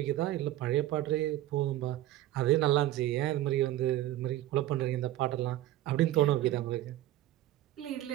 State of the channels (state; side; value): quieter; left; 14.5 dB